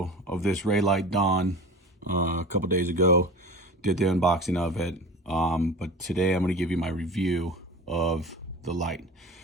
of this Reylight Dawn a couple days ago. Did the unboxing of it, but today I'm going to give you my review of the light.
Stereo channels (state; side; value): normal; both; correlation 0.36